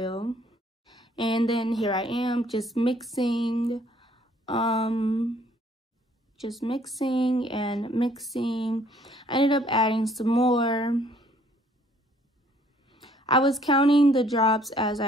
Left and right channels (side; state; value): both; normal; correlation 0.62